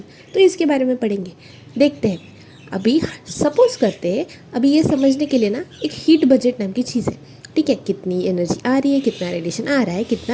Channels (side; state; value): both; identical; correlation 1.00